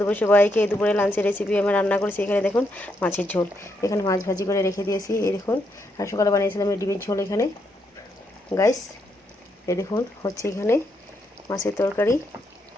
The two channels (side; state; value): both; normal; correlation 0.78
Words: দুপুর সবাইকে। দুপুরে লাঞ্চের রেসিপি আমি রান্না করেছি। এখানে দেখুন মাছের ঝোল, এখানে মাছ ভাজি করে রেখে দিয়েছি। এই দেখুন, আর সকালে বানিয়েছিলাম এই ডিমের ঝোল। এখানে গাইস এই দেখুন হচ্ছে এখানে মাছের তরকারি।